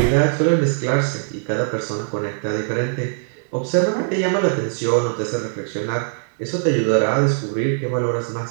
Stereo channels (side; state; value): left; silent; digital silence